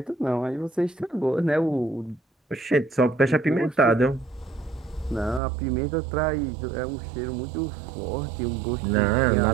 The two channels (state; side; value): drops out; left; at 5.4 s